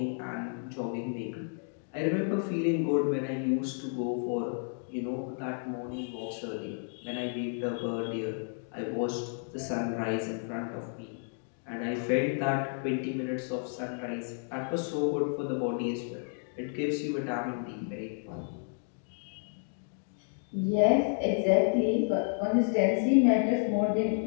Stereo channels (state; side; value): silent; right; 57 dB below the other